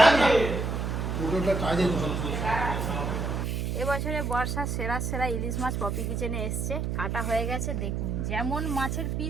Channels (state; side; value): noise; right; hum, 1 dB below the sound